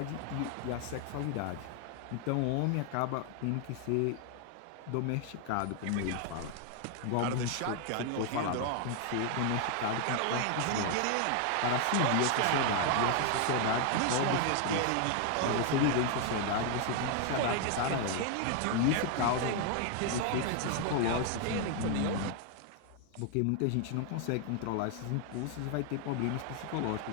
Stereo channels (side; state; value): both; different; correlation 0.00